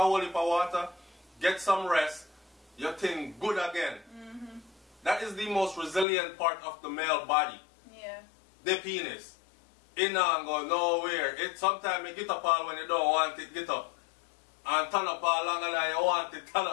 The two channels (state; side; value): drops out; right; at 6.1 s